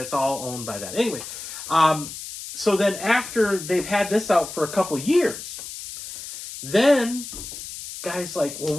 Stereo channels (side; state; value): left; noise; hiss, 10 dB below the sound